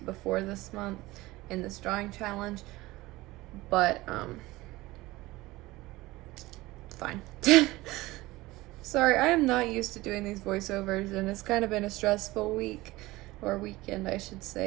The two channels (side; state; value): left; quieter; 19.5 dB